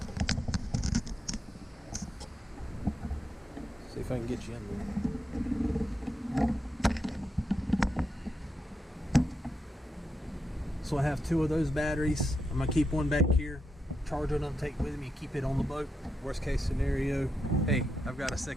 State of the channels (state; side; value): normal; both; correlation 0.85